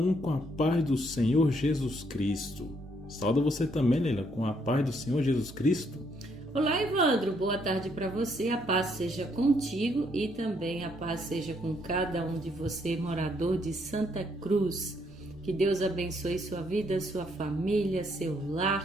com a paz do Senhor Jesus Cristo. Saúdo você também, Leila, com a paz do Senhor Jesus Cristo. Olá, Evandro. Boa tarde para você. A paz seja contigo e também a paz seja com cada um de você, morador de Santa Cruz. Que Deus abençoe sua vida, sua família, seu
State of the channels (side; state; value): both; normal; correlation 0.71